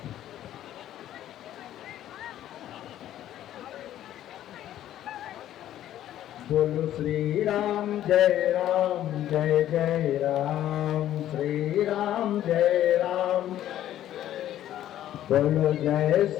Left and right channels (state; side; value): quieter; right; 12.2 dB